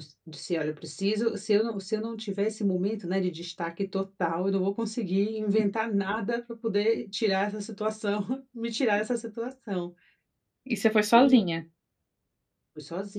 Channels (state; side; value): identical; both; correlation 1.00